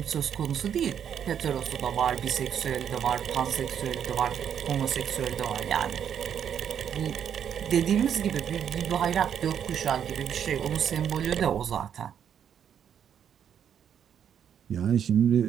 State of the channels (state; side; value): quieter; left; 8.7 dB